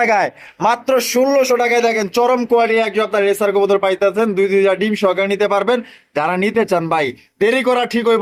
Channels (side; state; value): both; identical; correlation 1.00